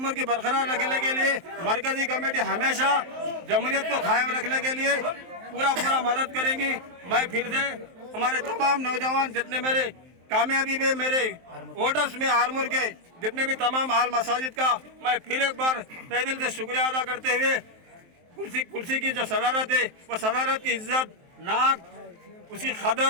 की बरकरार रखने के लिए मरकजी कमेटी हमेशा जमहूरियत को कायम रखने के लिए पूरा मदद करेंगी। मैं फिर से हमारे तमाम नौजवान जितने मेरे कामयाबी में मेरे वोटर्स में आरमूर के जितने भी तमाम आल मसाजिद का मैं फिर एक बार तहे दिल से शुक्रिया अदा करते हुए कुर्सी की जो सदारत है वो सदारत की इज्जत, नाक, उसकी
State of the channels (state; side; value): late; left; 23 ms